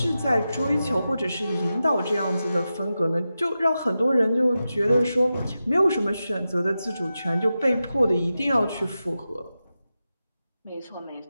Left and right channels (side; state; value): both; inverted; correlation -0.92